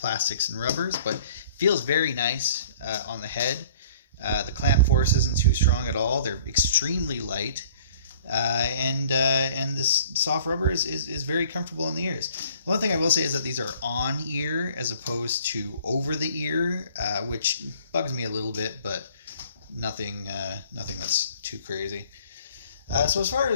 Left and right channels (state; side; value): inverted; both; correlation -0.52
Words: and rubbers, but feels very nice on the head. The clamp force isn't too strong at all. They're extremely light. And this soft rubber is very comfortable in the ears. One thing I will say is that these are on ear as opposed to over the ear, which bugs me a little bit, but nothing that's too crazy. So as far